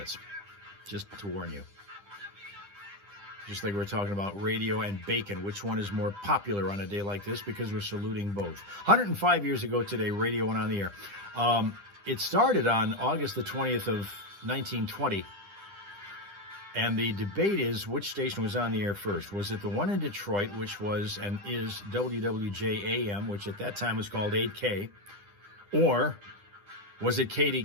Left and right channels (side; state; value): left; late; 10 ms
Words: just to warn you. Just like we're talking about radio and bacon, which one is more popular on a day like this, because we're saluting both. 105 years ago today, radio went on the air. It started on August the 20th of 1920. And the debate is which station was on the air first. Was it the one in Detroit, which was and is WWJAM, which at that time was called 8K, or was it